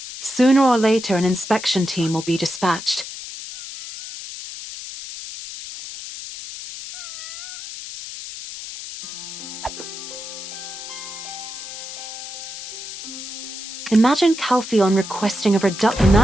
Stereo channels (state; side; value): noise; left; hiss, 10 dB below the sound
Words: Sooner or later an inspection team will be dispatched. Imagine Calpheon requesting a reduction. In